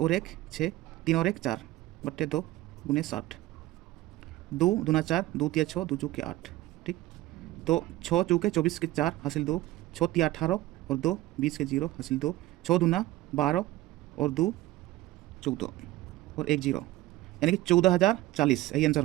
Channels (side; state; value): left; quieter; 16.8 dB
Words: 1 6 3 और 1 4 बट्टे 2 गुने 60। 2 दूना 4 2 तिया 6 2 चौके 8। ठीक, तो 6 चौके 24 के 4 हासिल 2 6 तिया 18 और 2 20 के 0 हासिल 2 6 दूना 12 और 2 14 और 1 0, यानी कि 14040 यही आंसर